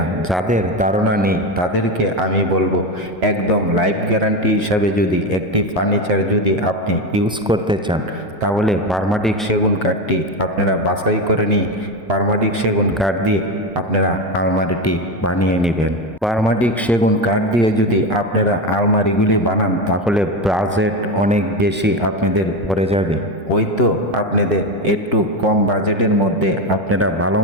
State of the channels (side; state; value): both; normal; correlation 0.17